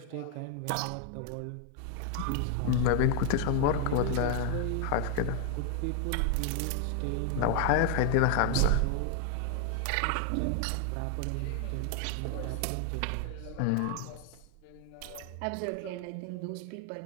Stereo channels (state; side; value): different; both; correlation 0.00